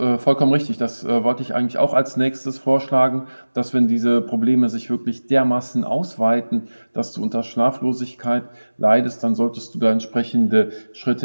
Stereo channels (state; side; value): inverted; both; correlation -1.00